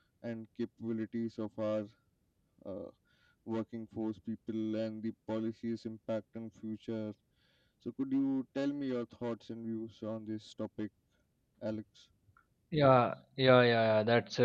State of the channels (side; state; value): both; identical; correlation 1.00